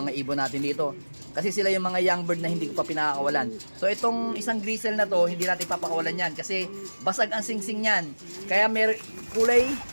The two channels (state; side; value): inverted; both; correlation -1.00